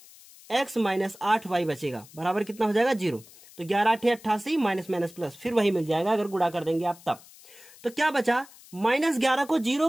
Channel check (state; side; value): noise; left; hiss, 22 dB below the sound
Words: x माइनस 8y बचेगा, बराबर कितना हो जाएगा 0। तो 11 8 88 माइनस माइनस प्लस, फिर वही मिल जाएगा अगर गुणा कर देंगे आप तब। तो क्या बचा, -11 को 0